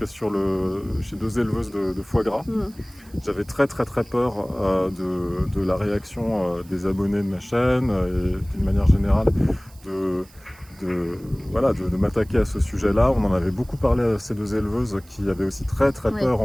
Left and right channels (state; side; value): noise; right; hiss, 26 dB below the sound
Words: chez 2 éleveuses de foie gras. J'avais très peur de la réaction des abonnés de ma chaîne et d'une manière générale de m'attaquer à ce sujet-là. On en avait beaucoup parlé à ces 2 éleveuses qui avaient aussi très peur,